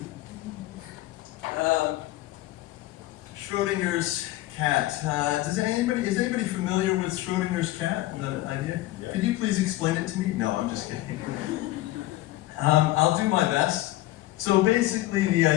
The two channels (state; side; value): quieter; right; 16.8 dB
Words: Schrodinger's cat. Is anybody familiar with Schrodinger's cat? The idea? Yeah. Could you please explain it to me? No, I'm just kidding. I'll do my best. So basically, the